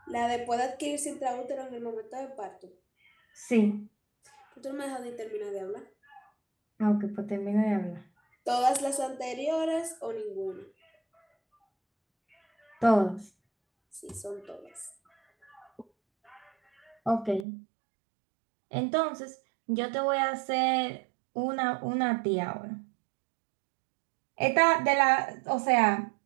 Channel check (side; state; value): left; drops out; at 17.4 s